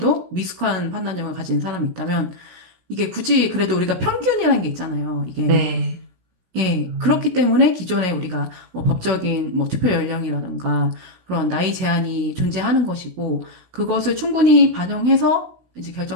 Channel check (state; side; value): late; left; 16 ms